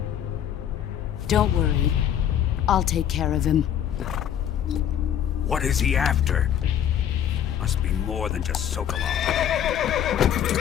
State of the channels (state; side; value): quieter; right; 9.9 dB